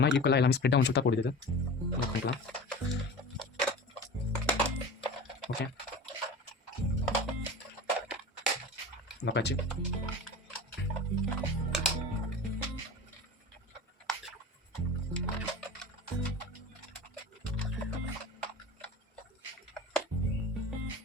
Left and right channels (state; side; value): normal; both; correlation 0.34